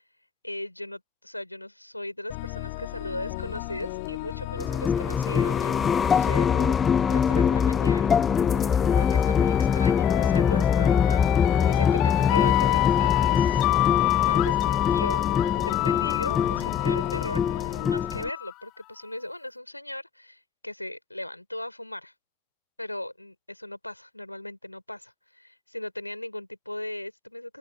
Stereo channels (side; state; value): right; quieter; 7.7 dB